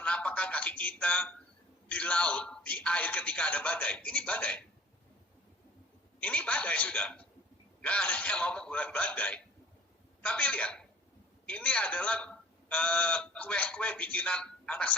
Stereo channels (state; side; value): normal; both; correlation 0.49